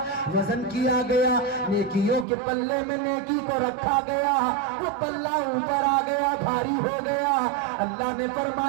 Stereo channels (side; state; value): left; drops out; at 2.2 s